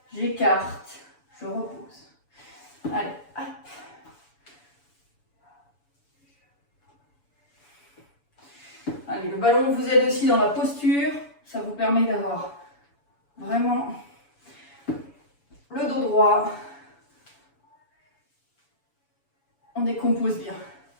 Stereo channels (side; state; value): right; late; 7.0 ms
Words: j'écarte, je repose. Allez, hop. Allez, le ballon vous aide aussi dans la posture, ça vous permet d'avoir vraiment le dos droit. On décompose bien.